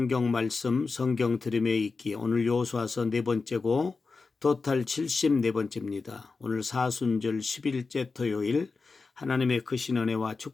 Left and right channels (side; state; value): right; quieter; 4.3 dB